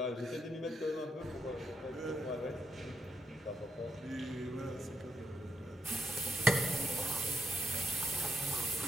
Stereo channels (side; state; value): both; normal; correlation 0.78